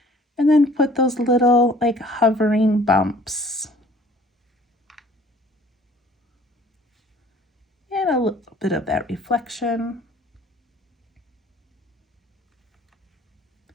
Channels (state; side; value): normal; both; correlation 0.54